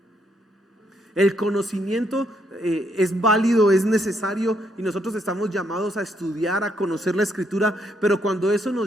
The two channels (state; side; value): normal; both; correlation 0.74